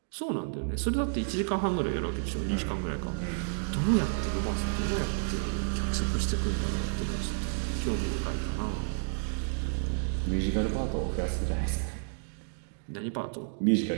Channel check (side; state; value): left; silent; digital silence